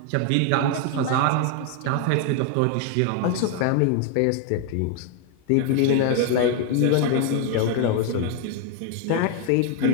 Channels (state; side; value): different; both; correlation 0.01